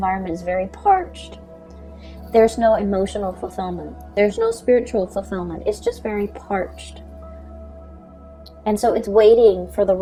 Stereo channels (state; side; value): identical; both; correlation 1.00